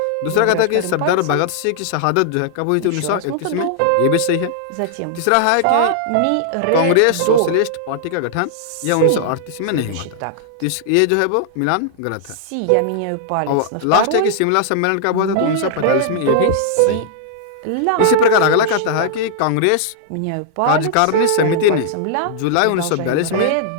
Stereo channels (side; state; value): both; different; correlation -0.01